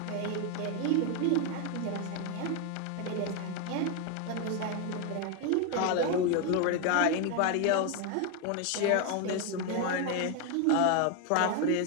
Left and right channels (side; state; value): both; different; correlation 0.01